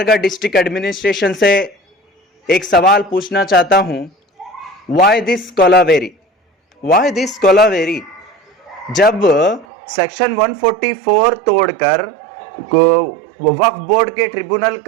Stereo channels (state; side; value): drops out; left; at 9.7 s